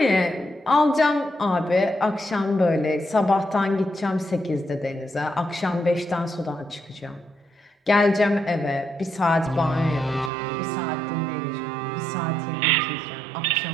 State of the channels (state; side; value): drops out; left; at 10.3 s